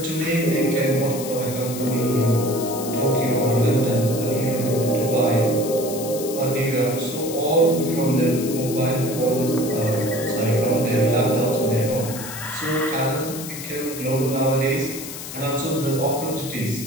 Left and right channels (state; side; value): noise; left; hiss, 10 dB below the sound